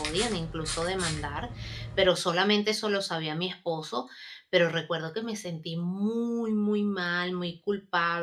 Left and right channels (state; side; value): identical; both; correlation 1.00